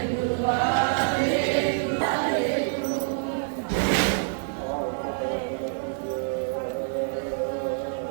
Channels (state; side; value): silent; left; digital silence